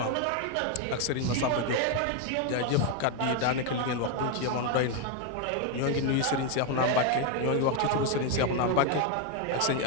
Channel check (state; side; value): different; both; correlation 0.01